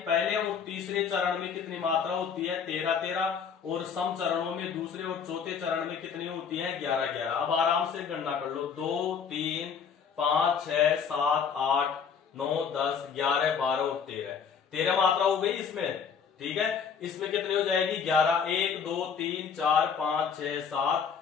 पहले और तीसरे चरण में कितनी मात्रा होती है, 13 13, और सम चरणों में दूसरे और चौथे चरण में कितनी होती है, 11 11। अब आराम से गणना कर लो, 2 3 5 6 7 8 9 10 11 12 और 13 13 मात्रा हो गई इसमें। ठीक है, इसमें कितनी हो जाएगी, 11। 1 2 3 4 5 6 7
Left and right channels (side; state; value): right; quieter; 6.6 dB